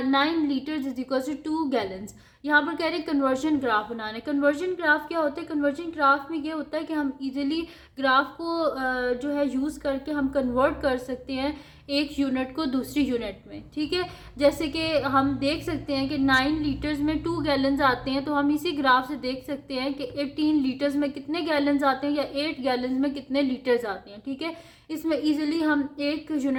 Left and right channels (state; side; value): identical; both; correlation 1.00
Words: litres is equal to 2 gallons. यहाँ पर कह रहे हैं कन्वर्जन ग्राफ बनाना है। कन्वर्जन ग्राफ क्या होता है? कन्वर्जन ग्राफ में ये होता है कि हम इजीली ग्राफ को जो है यूज़ करके हम कन्वर्ट कर सकते हैं एक यूनिट को दूसरी यूनिट में। ठीक है, जैसे कि हम देख सकते हैं कि 9 लीटर्स में 2 गैलन्स आते हैं, तो हम इसी ग्राफ से देख सकते हैं कि 18 लीटर्स में कितने गैलन्स आते हैं या 8 गैलन्स में कितने लीटर्स आते हैं। ठीक है, इसमें इजीली हम एक